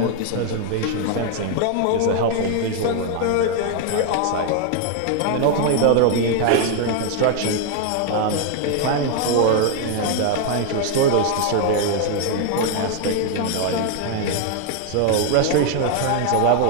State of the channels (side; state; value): both; different; correlation 0.00